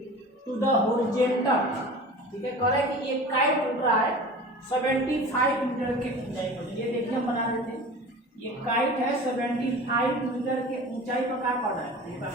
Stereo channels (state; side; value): normal; both; correlation 0.37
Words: to the horizontal. ठीक है, कह रहा है कि ये काइट उड़ रहा है 75 मीटर के ऊंचाई पर। ये देखिए हम बना देते हैं, ये काइट है 75 मीटर के ऊंचाई पर क्या पड़ रहा है।